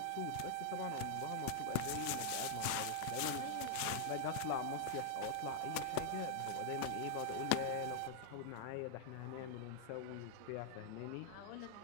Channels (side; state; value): both; different; correlation 0.00